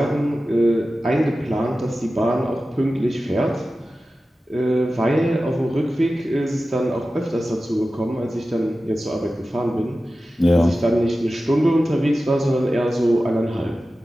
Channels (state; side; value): normal; both; correlation 0.94